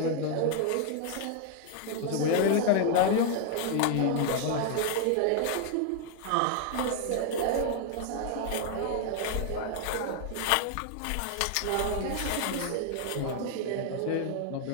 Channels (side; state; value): both; different; correlation 0.00